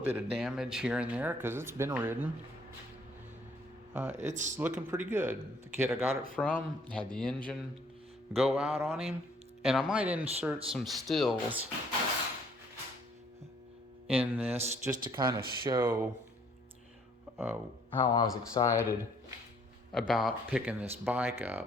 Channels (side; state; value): both; normal; correlation 0.62